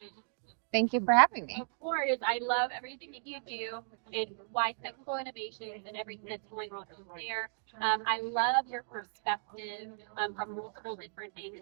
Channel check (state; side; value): silent; left; digital silence